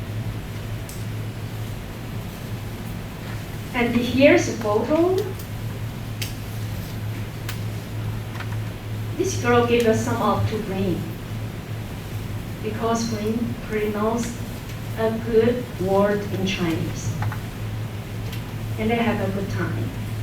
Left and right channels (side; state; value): both; identical; correlation 1.00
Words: And here's a photo. This girl gave us some up to bring, because bring pronounces a good word in Chinese. And they have a good time.